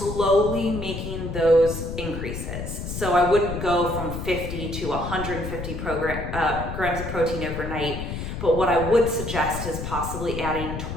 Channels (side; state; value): left; noise; rumble, 6 dB below the sound